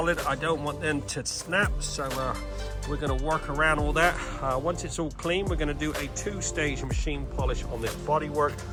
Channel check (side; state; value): both; identical; correlation 1.00